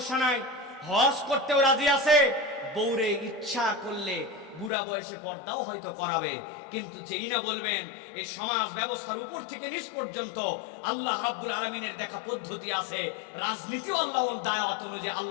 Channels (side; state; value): right; drops out; at 4.7 s